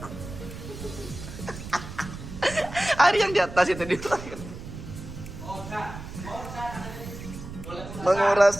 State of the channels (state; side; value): noise; right; rumble, 11 dB below the sound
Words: hari yang di atas itu di